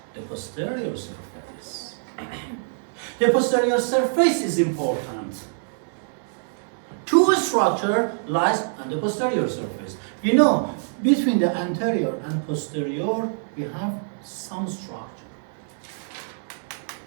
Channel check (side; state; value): left; silent; 62 dB below the other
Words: the posterior surface. The posterior surface is important. Two structure lies on the posterior surface. We know between the anterior and posterior we have some structure.